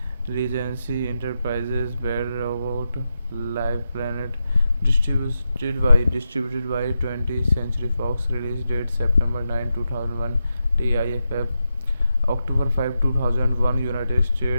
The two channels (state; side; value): inverted; both; correlation -0.87